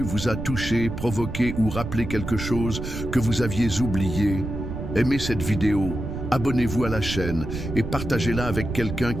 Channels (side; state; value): right; noise; rumble, 6 dB below the sound